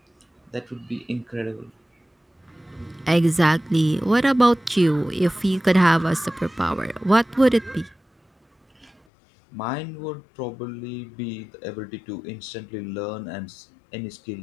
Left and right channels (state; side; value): drops out; right; at 8.9 s